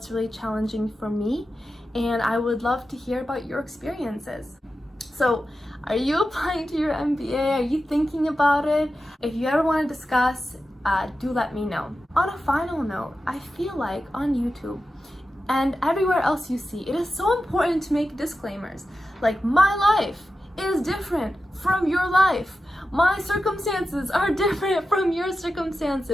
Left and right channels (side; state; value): both; normal; correlation 0.92